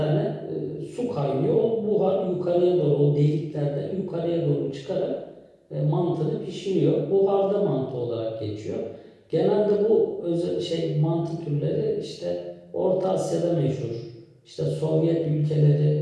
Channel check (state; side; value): identical; both; correlation 1.00